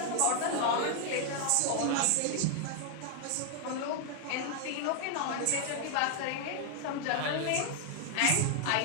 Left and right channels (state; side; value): different; both; correlation 0.00